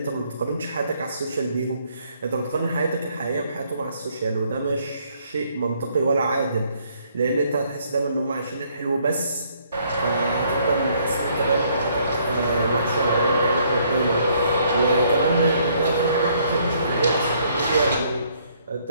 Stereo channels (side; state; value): both; inverted; correlation -0.67